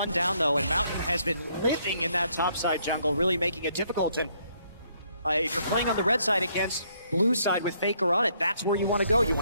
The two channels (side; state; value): both; inverted; correlation -0.70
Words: down though, and Mountain has been living in that topside jungle, really making it difficult. And if you're playing on the red side against blue side with Faker on it, that's where you want to go. You